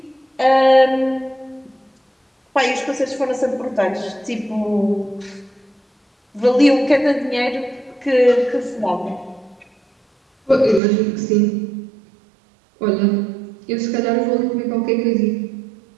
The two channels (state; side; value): drops out; left; at 10.8 s